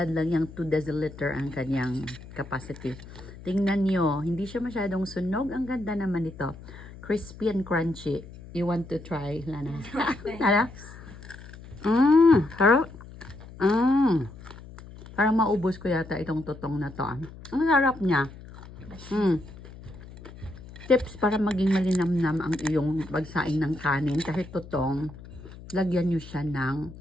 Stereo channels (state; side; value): noise; left; hum, 16 dB below the sound